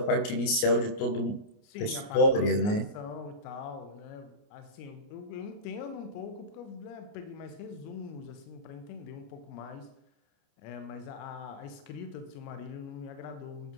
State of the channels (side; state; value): right; late; 29 ms